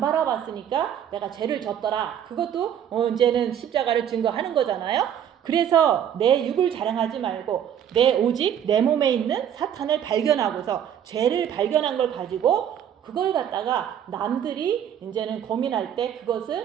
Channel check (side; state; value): left; quieter; 9.5 dB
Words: 내가 죄를 졌더라. 그것도 이제는 십자가를 증거하는 거잖아요. 그래서 내 육을 자랑하지 말고 오직 내 몸에 있는 사탄을 발견하고서 죄를 발견한 걸 가지고 그걸 갖다가 남들이 이제는 고민할 때